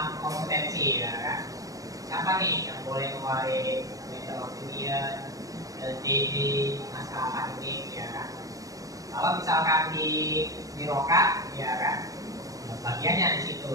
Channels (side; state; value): left; late; 0.17 ms